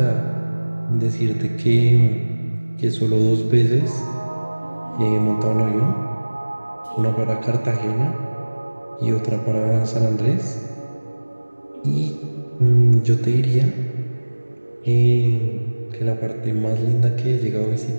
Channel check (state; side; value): inverted; both; correlation -1.00